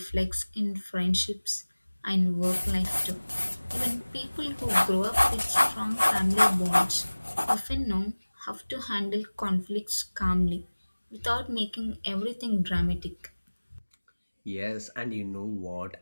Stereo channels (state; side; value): inverted; both; correlation -1.00